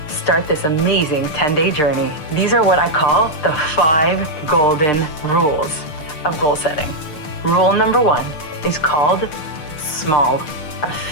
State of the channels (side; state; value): right; late; 6.7 ms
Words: start this amazing 10-day journey. These are what I call the 5 golden rules of goal setting. Rule number 1 is called small. A